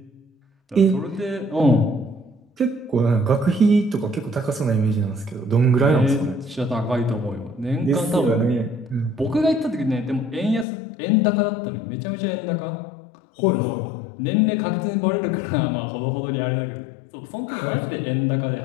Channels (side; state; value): right; drops out; at 10.7 s